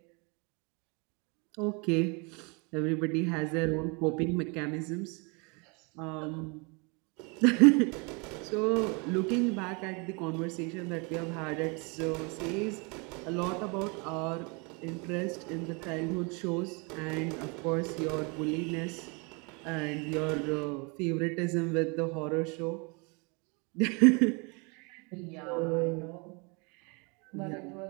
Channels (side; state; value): left; quieter; 31.4 dB